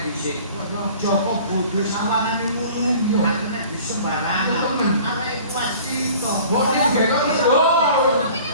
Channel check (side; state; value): both; inverted; correlation -0.47